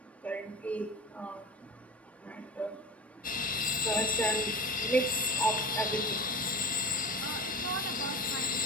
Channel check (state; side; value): normal; both; correlation 0.33